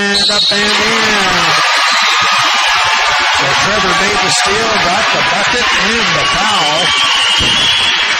up and in. So Trevor made the steal, got the bucket and the foul.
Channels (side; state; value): both; identical; correlation 1.00